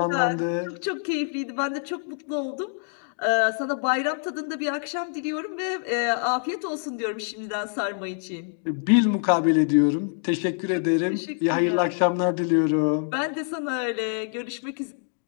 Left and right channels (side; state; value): right; silent; 61 dB below the other